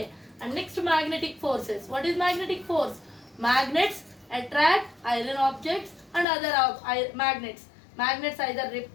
And next magnetic forces. What is magnetic force? Magnets attract iron objects and other magnets. Magnets either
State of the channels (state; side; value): drops out; right; at 6.2 s